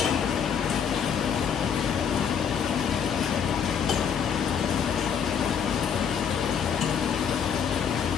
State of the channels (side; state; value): right; quieter; 7.5 dB